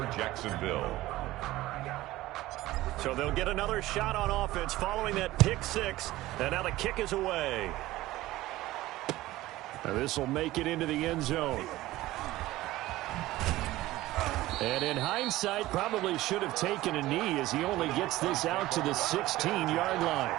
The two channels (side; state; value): left; quieter; 17.0 dB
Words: Jacksonville. So they'll get another shot on offense following that pick six. And now the kick is away. This will make it into the end zone. And in hindsight, probably should have taken a knee as he only gets this out to the 16-yard line.